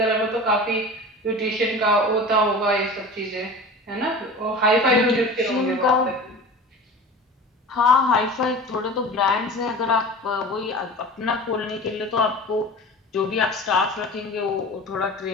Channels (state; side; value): normal; both; correlation 0.35